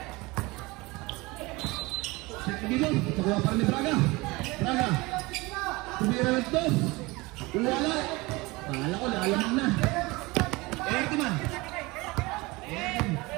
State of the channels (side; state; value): left; quieter; 23.0 dB